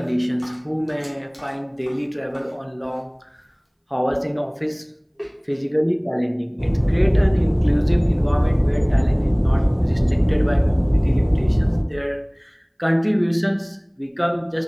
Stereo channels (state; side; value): identical; both; correlation 1.00